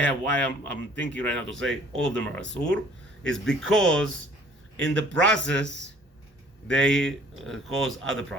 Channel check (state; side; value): normal; both; correlation 0.55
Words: why I'm thinking right now to say all of them are asur, is because in the process they cause other